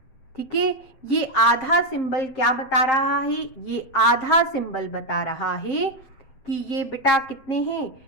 ठीक है। ये आधा सिंबल क्या बता रहा है, ये आधा सिंबल बता रहा है कि ये बेटा कितने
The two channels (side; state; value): right; late; 7.8 ms